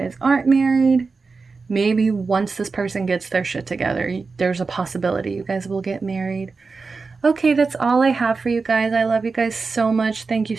aren't married, maybe once this person gets their shit together, there's a possibility you guys will get married. Okay, that's all I have for you guys. I love you guys so much. Thank you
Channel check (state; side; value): quieter; left; 4.4 dB